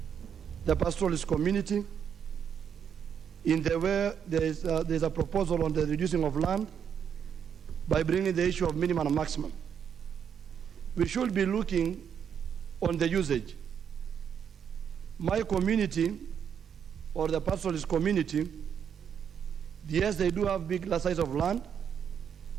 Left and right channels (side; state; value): left; quieter; 7.9 dB